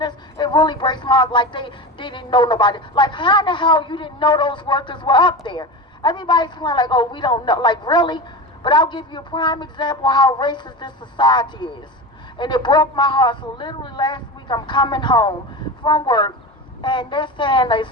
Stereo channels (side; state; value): both; normal; correlation 0.26